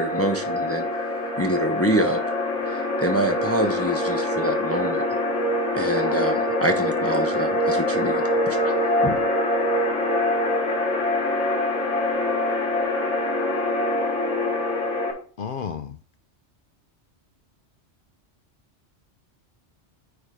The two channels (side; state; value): both; normal; correlation 0.21